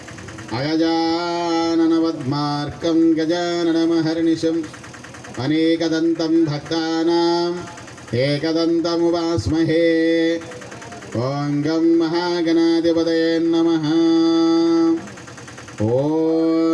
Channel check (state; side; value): identical; both; correlation 1.00